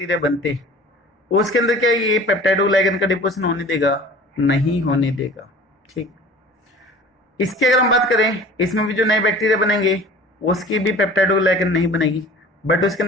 बनते हैं उसके अंदर क्या ये पेप्टाइडोग्लाइकन का डिपोजिशन होने देगा? नहीं होने देगा। ठीक, इसकी अगर हम बात करें, इसमें भी जो नए बैक्टीरिया बनेंगे उसकी भी पेप्टाइडोग्लाइकन नहीं बनेगी, बट उसके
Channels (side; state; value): both; normal; correlation 0.44